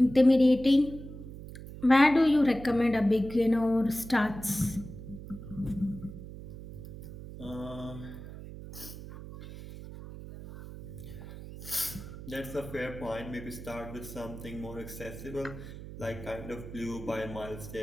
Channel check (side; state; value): right; noise; hum, 12 dB below the sound